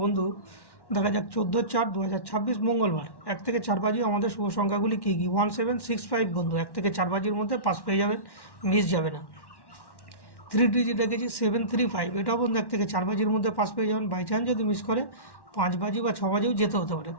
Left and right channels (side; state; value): right; late; 1.1 ms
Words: বন্ধু, দেখা যাক 14/4/2026 মঙ্গলবার 1 থেকে 4 বাজি আমাদের শুভ সংখ্যাগুলি কী কী। 1765 বন্ধু, 1 থেকে 4 বাজির মধ্যে পাস পেয়ে যাবেন, মিস যাবে না। 3 ডিজিট রেখেছি 735, এটাও বন্ধু 1 থেকে 4 বাজির মধ্যে পাস পেয়ে যাবেন। বাই চান্স যদি মিস করে 5 বাজি বা 6 বাজিও যেতে হতে পারে,